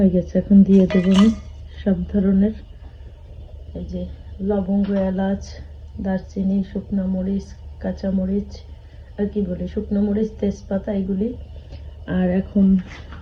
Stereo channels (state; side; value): identical; both; correlation 1.00